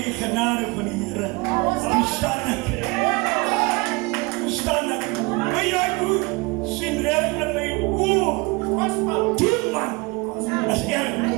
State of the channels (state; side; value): quieter; left; 26.6 dB